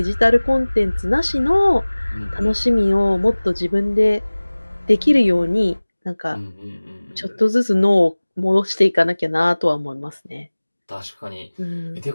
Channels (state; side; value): inverted; both; correlation -1.00